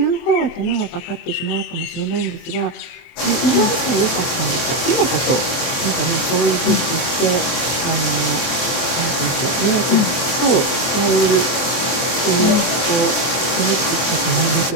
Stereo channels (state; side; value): late; right; 23 ms